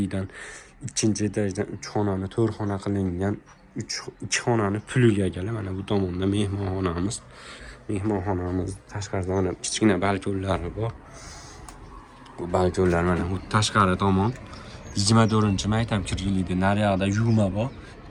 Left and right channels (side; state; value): both; identical; correlation 1.00